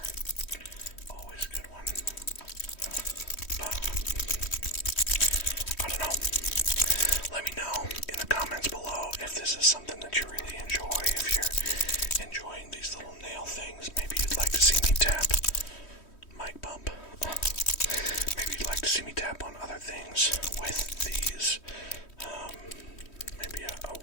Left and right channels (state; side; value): late; right; 3.1 ms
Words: Always a good one. But, I don't know. Let me know in the comments below if this is something that you really enjoy. If you're enjoying these little nail things, maybe you'd like to see me tap. Mic bump. Maybe you'd like to see me tap on other things with these. Maybe